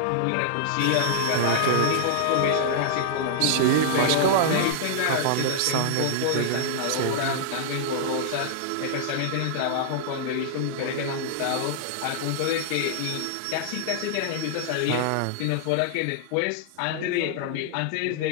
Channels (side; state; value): both; different; correlation -0.01